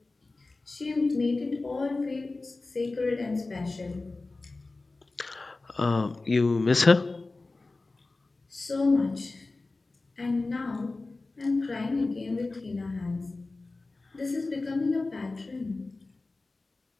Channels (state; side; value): quieter; right; 3.4 dB